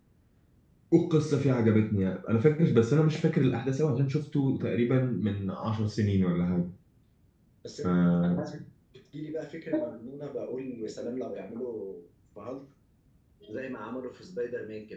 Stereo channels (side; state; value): both; identical; correlation 1.00